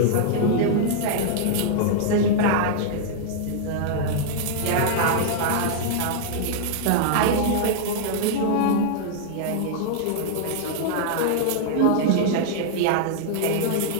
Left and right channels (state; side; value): different; both; correlation -0.01